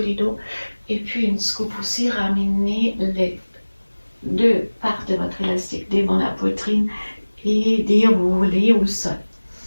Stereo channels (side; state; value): both; inverted; correlation -1.00